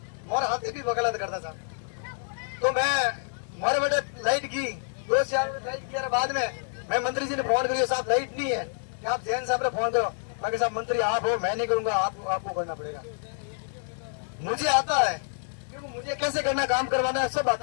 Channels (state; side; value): silent; right; 59 dB below the other